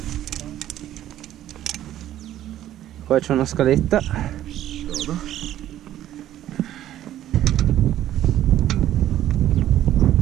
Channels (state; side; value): quieter; left; 12.5 dB